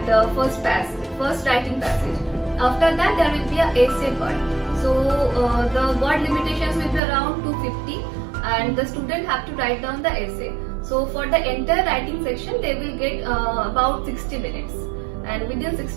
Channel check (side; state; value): left; drops out; at 7.0 s